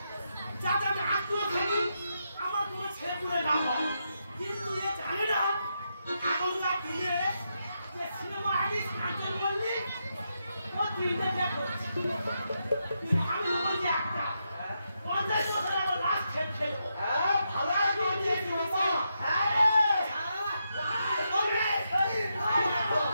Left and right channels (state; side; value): inverted; both; correlation -0.83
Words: যাতে আমি আত্মীয় থাকি, আমার কোনো ছেলে পুলে না হয়। কিন্তু এ জানে না এখনকার দিনে যে সিনেমা আর্টিস্ট কাঞ্চন মল্লিক ও দিনে দেখো আমি বলছি একটা 50 বছর আমার লাস্ট খেল খেলবো। হ্যাঁ ভালো আছে